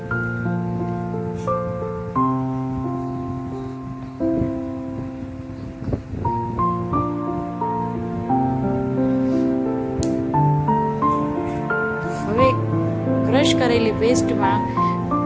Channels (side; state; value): both; identical; correlation 1.00